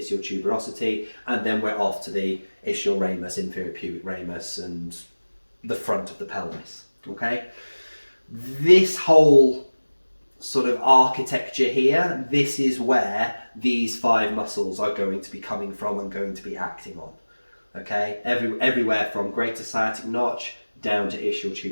tuberosity, and then we're off to the ischial ramus, inferior pubic ramus, and the front of the pelvis. Okay, this whole sort of architecture here, this is where these 5 muscles are going to be coming from and going to be acting on. Okay, everywhere from greater sciatic notch down to ischial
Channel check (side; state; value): both; inverted; correlation -1.00